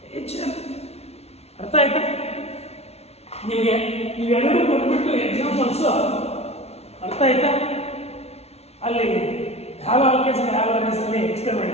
ಅರ್ಥ ಆಯ್ತಾ? ನಿಮಗೆ ಇವೆರಡು ಕೊಟ್ಬಿಟ್ಟು examples ಅರ್ಥ ಆಯ್ತಾ? ಅಲ್ಲಿ ಹ್ಯಾವ್ ಆಲ್ಕೇಸ್ ಹ್ಯಾವ್ ಆಲ್ಕೇಸ್ ಅಲ್ಲಿ ಎಕ್ಸ್ಪ್ಲೇನ್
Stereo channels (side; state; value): right; late; 0.31 ms